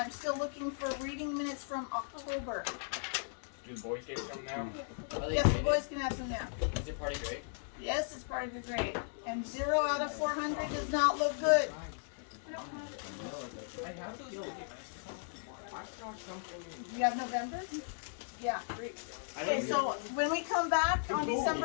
still looking for reading minutes from October. Do the boys get some now? Are they Yes, the graded? boys can have some now. Is it part of grade? Yes, it's part of your grade. And 0 out of 400 does not look good. I have those. I saw something. You have November? Yeah, great. I Okay, don't so when we come back on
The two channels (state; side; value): silent; right; 53 dB below the other